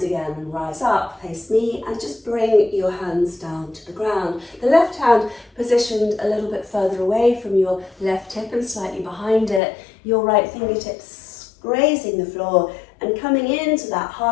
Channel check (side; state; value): right; drops out; at 9.6 s